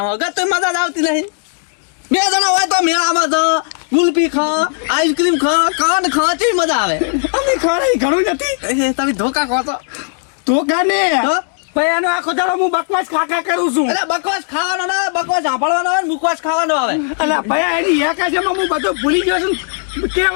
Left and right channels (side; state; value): right; silent; digital silence